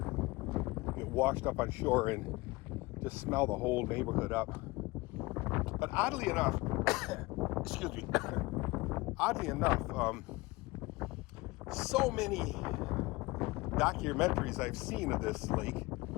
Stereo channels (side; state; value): right; quieter; 22.3 dB